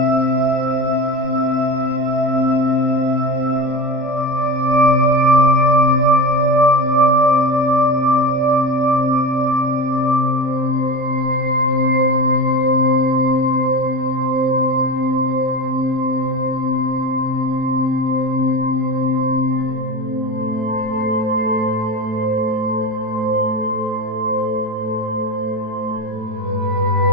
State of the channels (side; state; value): left; late; 27 ms